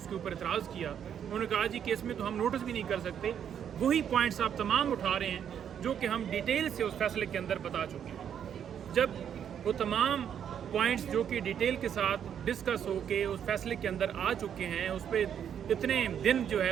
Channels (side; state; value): left; quieter; 8.8 dB